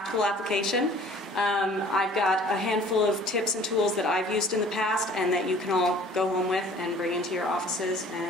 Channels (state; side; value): normal; both; correlation 0.50